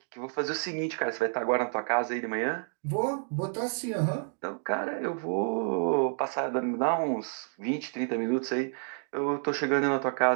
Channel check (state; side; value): silent; left; 58 dB below the other